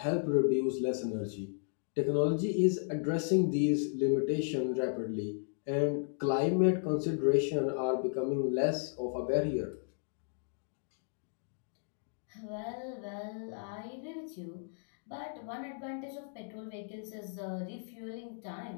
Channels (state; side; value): silent; right; digital silence